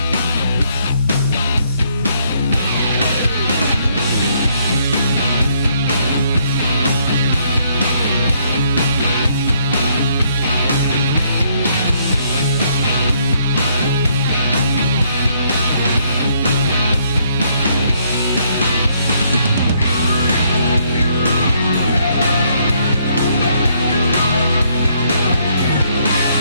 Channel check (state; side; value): inverted; both; correlation -0.70